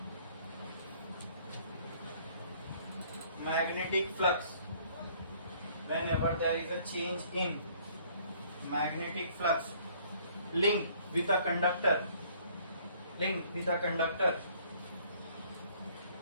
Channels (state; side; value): inverted; both; correlation -0.59